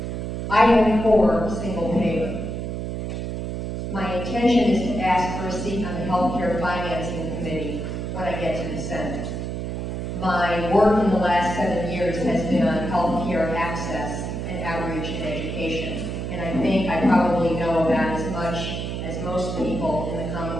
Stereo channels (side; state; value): right; noise; hum, 4 dB below the sound